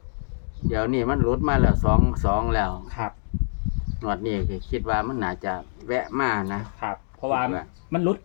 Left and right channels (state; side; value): silent; right; digital silence